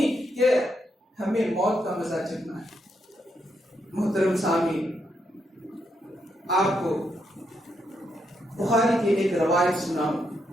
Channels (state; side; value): normal; both; correlation 0.79